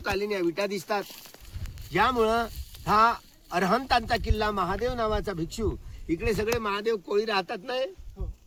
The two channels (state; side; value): identical; both; correlation 1.00